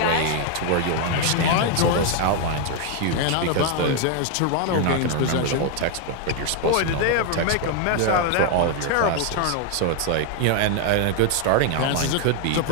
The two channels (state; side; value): different; both; correlation 0.01